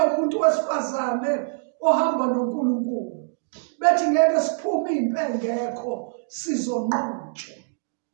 wesifazane ohamba noNkulunkulu. Bethi ngeke siphume impi engekho sizonqotshwa.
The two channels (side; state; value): left; silent; digital silence